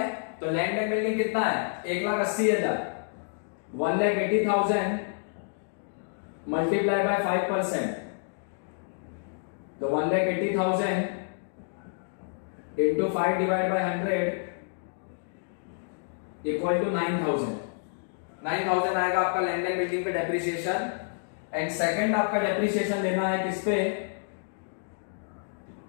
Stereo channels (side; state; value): right; silent; digital silence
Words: तो लैंड एंड बिल्डिंग कितना है 1,80,000, 1,80,000 मल्टीप्लाई बाय 5%, तो 1,80,000 into 5 divide by 100 equal to 9,000। 9,000 आएगा आपका लैंड एंड बिल्डिंग पे डेप्रिसिएशन। एंड सेकंड आपका डेप्रिसिएशन लेना है किस पे,